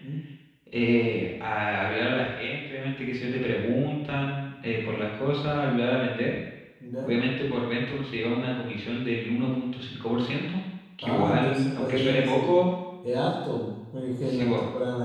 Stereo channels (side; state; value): both; identical; correlation 1.00